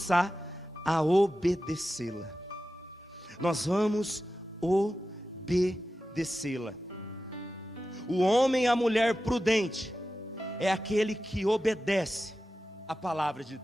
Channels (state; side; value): normal; both; correlation 0.93